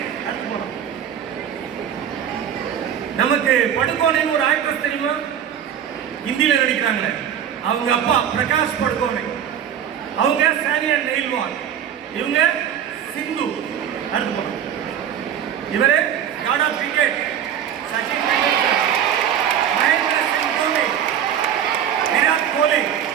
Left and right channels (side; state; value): left; quieter; 9.3 dB